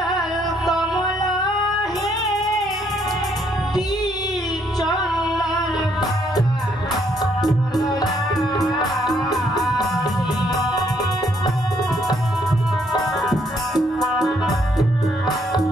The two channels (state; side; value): normal; both; correlation 0.70